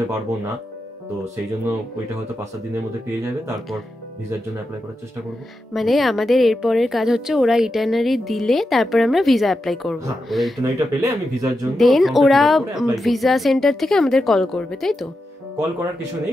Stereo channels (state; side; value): normal; both; correlation 0.88